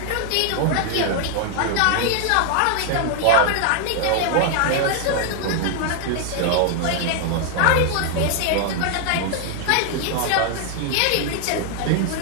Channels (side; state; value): both; different; correlation 0.00